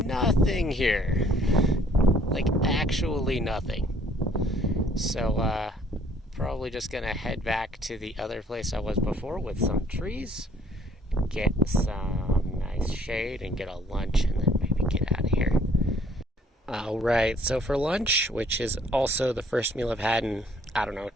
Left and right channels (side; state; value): both; normal; correlation 0.60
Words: here. Like, actually nothing. So, probably just gonna head back to the other place I was before with some trees, get some nice shade, and get a lunch, and then maybe get out of here. Alright, so for lunch, which is also the first meal I've had in,